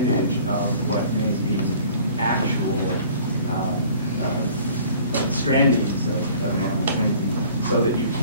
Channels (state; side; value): inverted; both; correlation -0.51